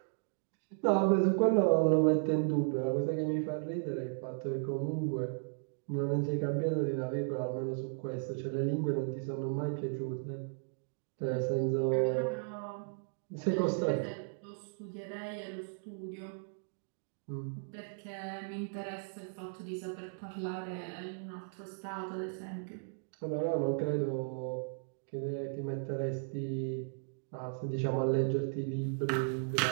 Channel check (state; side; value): silent; left; digital silence